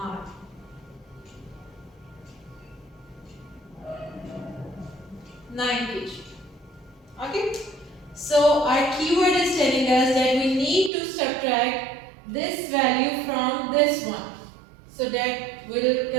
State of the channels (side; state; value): left; drops out; at 10.9 s